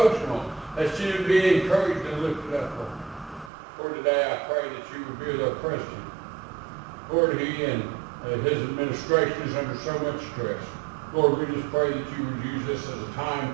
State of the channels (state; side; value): drops out; left; at 3.5 s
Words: that she would be encouraged and lifted up, Lord. Lord, today I pray that you would be with our president. Lord, he and his administration is under so much stress. Lord, we just pray that you would use this as a time